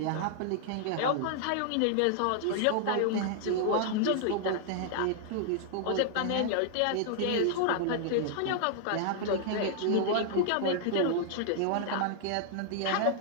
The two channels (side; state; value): both; different; correlation -0.01